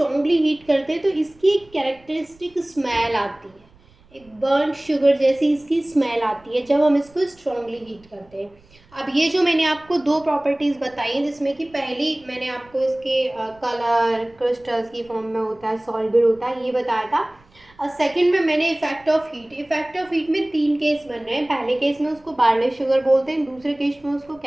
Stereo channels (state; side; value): noise; right; rumble, 29 dB below the sound